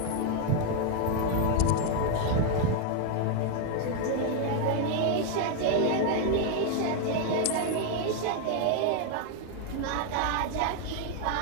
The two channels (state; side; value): different; both; correlation 0.00